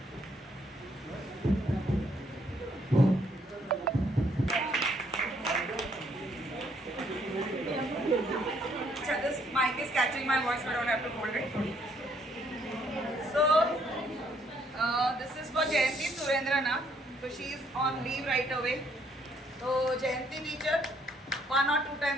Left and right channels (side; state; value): both; normal; correlation 0.68